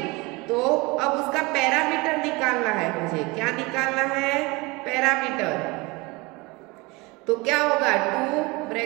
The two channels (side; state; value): left; quieter; 24.8 dB